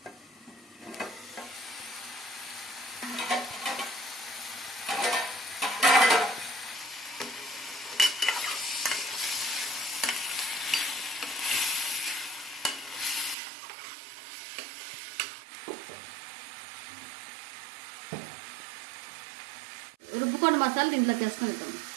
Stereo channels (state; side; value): drops out; left; at 13.4 s